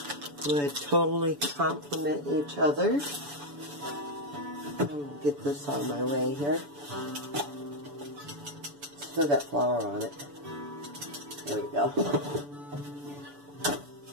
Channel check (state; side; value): late; left; 7.0 ms